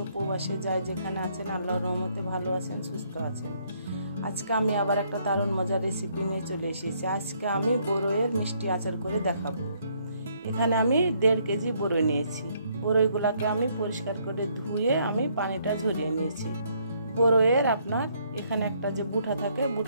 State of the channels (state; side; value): inverted; both; correlation -0.69